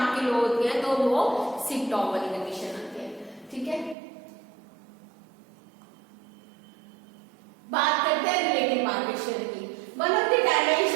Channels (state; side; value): drops out; left; at 4.0 s